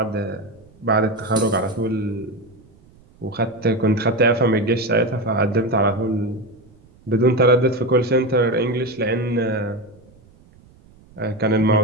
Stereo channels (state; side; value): noise; right; rumble, 28 dB below the sound